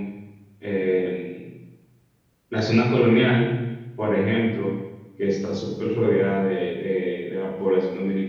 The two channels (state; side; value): identical; both; correlation 1.00